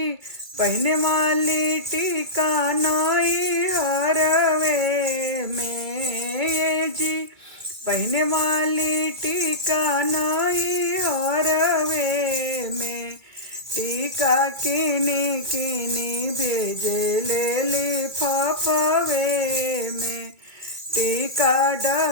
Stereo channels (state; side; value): late; left; 2.3 ms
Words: पहने वाली टीका नाई हरवे में, ए जी पहने वाली टीका नाई हरवे में। टीका किनी किनी भेजे ले लिफाफे में, टीका